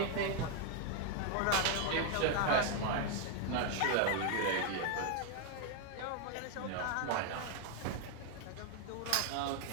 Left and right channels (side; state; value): both; different; correlation 0.01